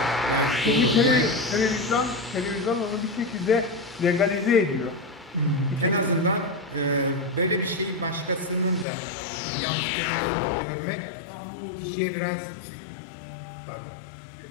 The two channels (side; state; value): right; drops out; at 8.8 s